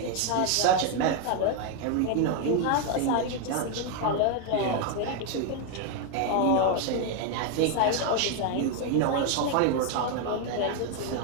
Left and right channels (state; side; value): different; both; correlation 0.01